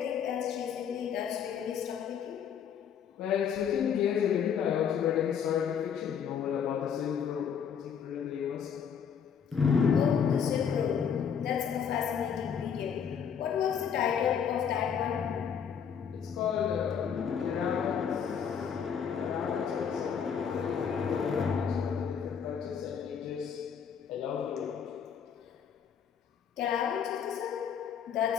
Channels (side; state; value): right; quieter; 7.5 dB